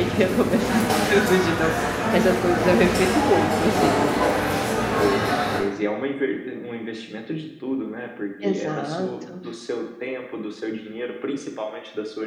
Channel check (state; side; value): identical; both; correlation 1.00